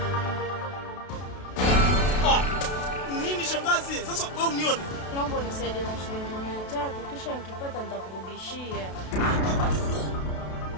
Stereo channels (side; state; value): right; late; 32 ms